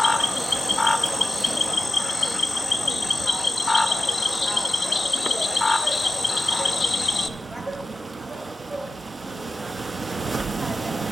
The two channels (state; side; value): normal; both; correlation 0.95